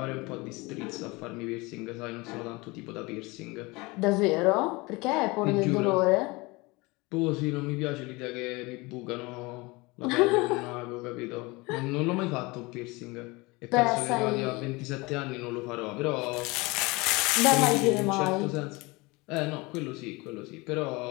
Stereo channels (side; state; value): right; quieter; 24.3 dB